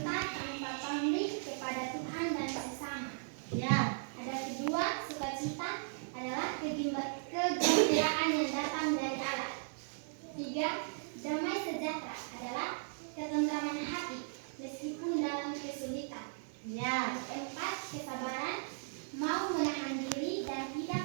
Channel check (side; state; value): left; silent; digital silence